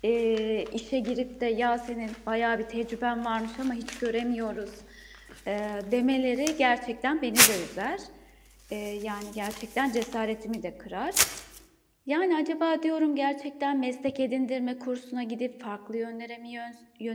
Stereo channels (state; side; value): identical; both; correlation 1.00